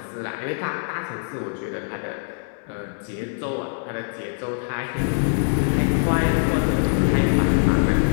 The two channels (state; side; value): silent; right; digital silence